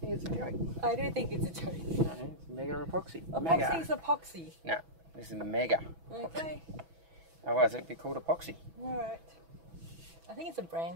it's a joke? I do think it's a joke. No, it's mega epoxy. Epoxy is epoxy. No, this is mega. Okay. Otherwise it'd be called epoxy. Alright. I think it's a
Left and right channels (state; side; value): late; left; 6.1 ms